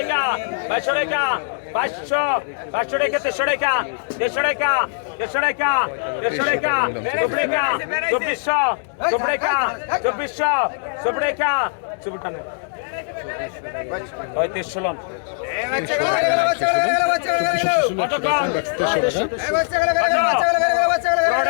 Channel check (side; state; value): right; silent; digital silence